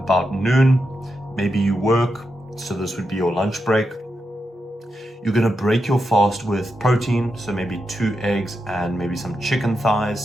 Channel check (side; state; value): both; normal; correlation 0.86